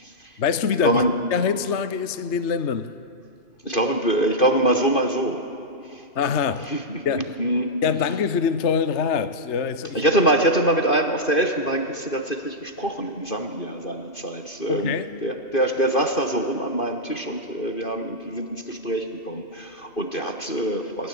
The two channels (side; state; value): right; late; 2.5 ms